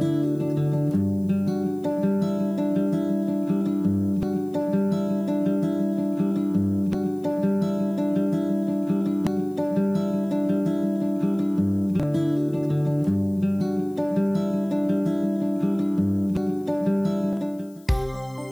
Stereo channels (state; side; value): noise; left; hiss, 29 dB below the sound